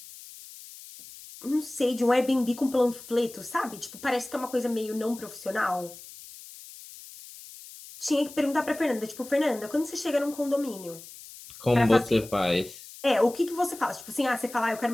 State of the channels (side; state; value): left; noise; hiss, 17 dB below the sound